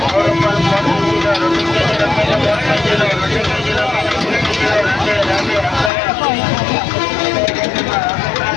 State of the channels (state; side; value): drops out; right; at 5.9 s